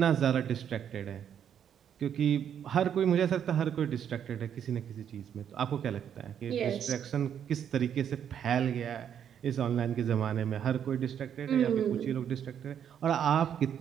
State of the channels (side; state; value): left; quieter; 8.9 dB